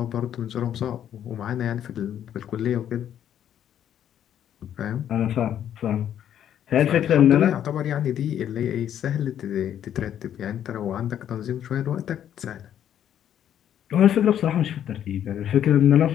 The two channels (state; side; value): quieter; right; 10.2 dB